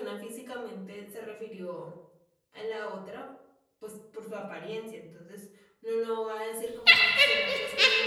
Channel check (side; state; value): both; identical; correlation 1.00